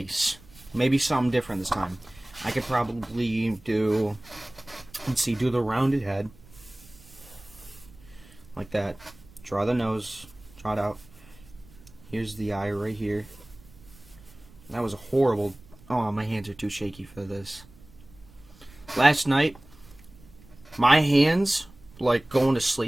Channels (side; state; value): right; noise; rumble, 23 dB below the sound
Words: Maybe something different this time. I could probably do, let's see, do the rounded head. Like that. Draw the nose. Draw it out. Here's the eye right here. That was a horrible... Oh, my hands are too shaky for this. Last night... My hands, like, going to